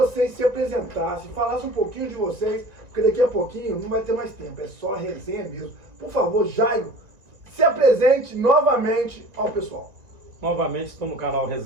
se apresentassem, falassem um pouquinho de vocês, porque daqui a pouquinho não vai ter mais tempo, é só resenha mesmo. Por favor, Jairo, se apresente novamente ao pessoal. Novamente estou no canal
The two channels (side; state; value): left; late; 1.9 ms